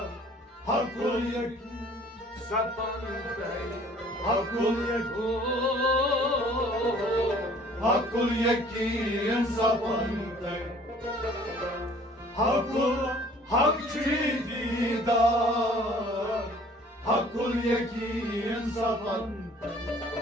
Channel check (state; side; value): normal; both; correlation 0.53